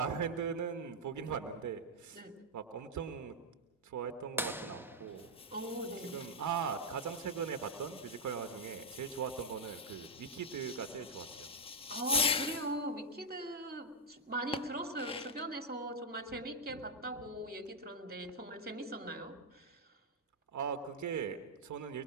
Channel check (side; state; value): both; normal; correlation -0.02